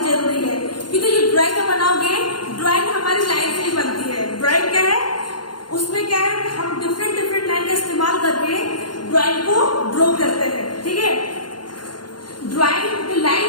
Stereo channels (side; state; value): right; late; 0.71 ms